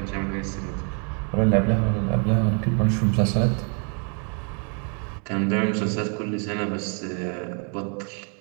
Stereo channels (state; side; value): quieter; left; 39.4 dB